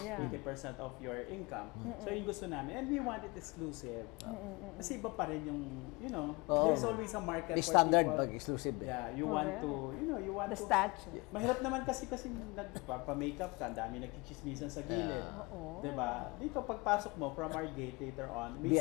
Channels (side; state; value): right; quieter; 25.5 dB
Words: 80% of your income. So yung gusto namin, and we want it exclusive. Kasi iba pa rin yung, Oo. there's always a market May for standard people. pag exclusive eh. Yeah, you want Correct. to, you want The to. statue. Mahirap naman kasi nagpapa-makeup ka, ang dami nagchichismisan sa gilid. Oo. Diba? Dito pagpasok mo from our gate later on, may